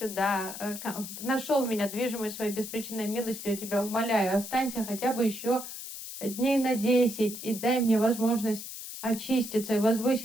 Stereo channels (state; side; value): noise; left; hiss, 10 dB below the sound